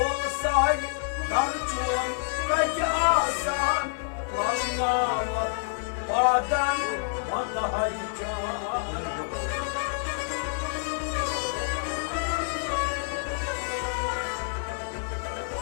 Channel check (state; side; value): silent; right; digital silence